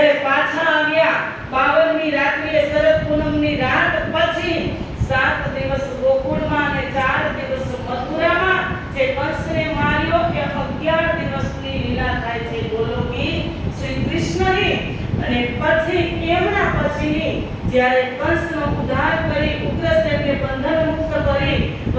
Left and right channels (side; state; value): both; identical; correlation 1.00